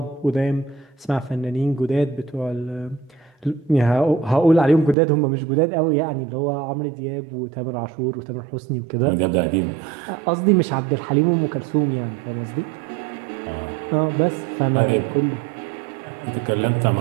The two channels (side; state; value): left; drops out; at 5.0 s